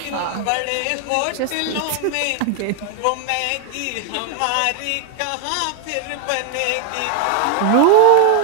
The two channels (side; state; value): both; different; correlation 0.00